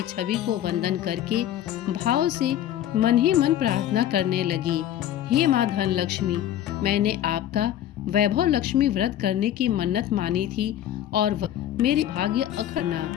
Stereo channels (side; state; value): right; quieter; 11.6 dB